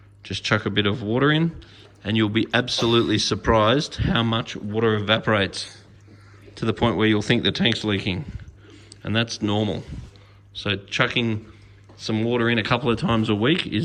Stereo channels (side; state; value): both; identical; correlation 1.00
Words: just chuck a bit of water in, and you'll be absolutely surprised how much water evaporates, to the point where you'll think the tank's leaking, and that's normal. So chucking some water in a couple of times a week